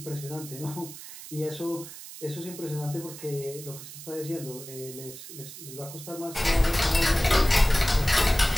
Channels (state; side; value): noise; right; hiss, 13 dB below the sound